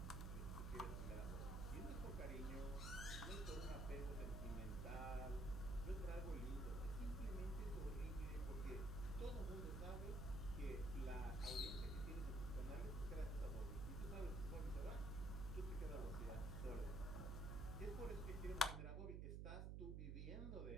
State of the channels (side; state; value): right; noise; hum, 1 dB below the sound